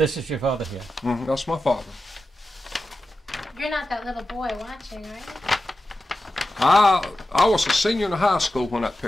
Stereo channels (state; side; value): normal; both; correlation 0.91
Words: is your father here. That's my father. You're not that little boy watching, right? I was a senior in high school when that